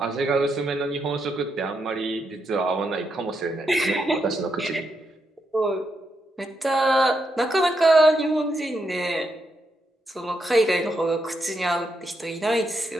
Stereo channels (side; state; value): both; normal; correlation 0.82